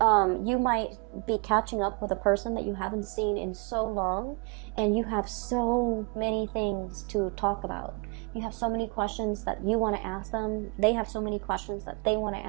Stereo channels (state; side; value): quieter; left; 33.0 dB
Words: might be catching up with a person that you haven't seen in so long, and you have so many things to talk about. You have so many questions that you want to ask them. They have so many questions that they want to